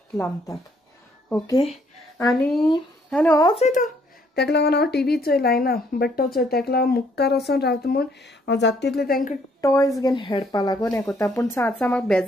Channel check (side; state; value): both; normal; correlation 0.67